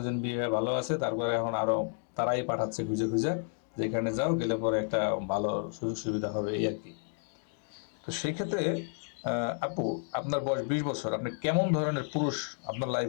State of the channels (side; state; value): right; silent; 57 dB below the other